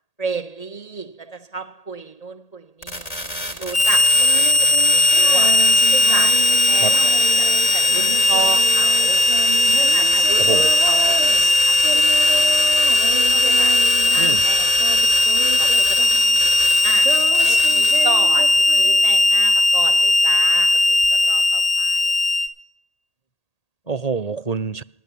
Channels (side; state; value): right; late; 1.8 ms